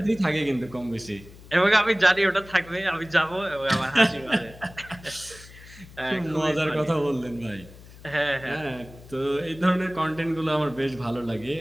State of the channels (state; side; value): noise; left; hum, 20 dB below the sound